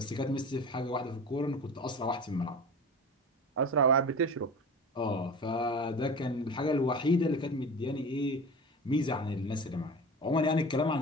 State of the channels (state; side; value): normal; both; correlation 0.34